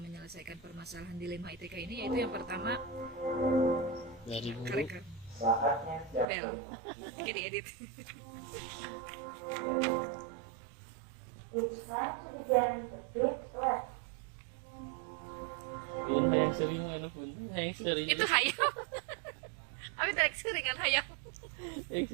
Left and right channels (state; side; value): drops out; left; at 6.2 s